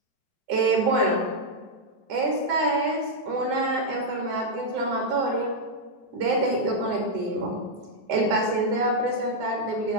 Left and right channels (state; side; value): late; left; 7.6 ms